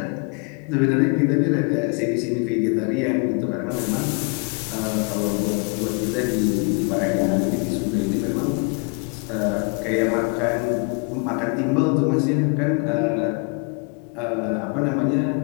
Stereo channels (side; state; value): right; quieter; 35.5 dB